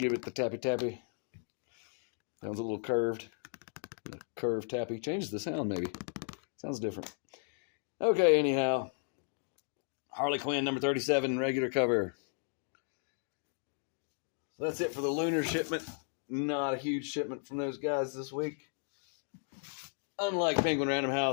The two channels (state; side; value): silent; right; 55 dB below the other